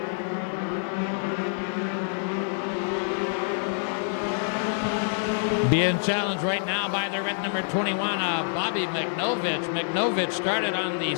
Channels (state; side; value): silent; right; digital silence